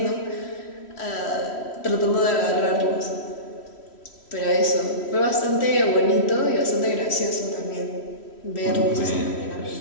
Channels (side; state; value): right; late; 3.1 ms